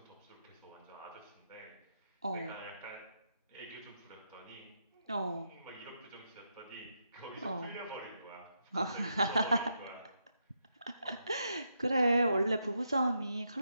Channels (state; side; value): inverted; both; correlation -0.82